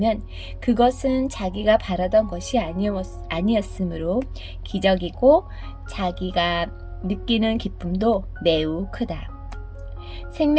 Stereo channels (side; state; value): both; identical; correlation 1.00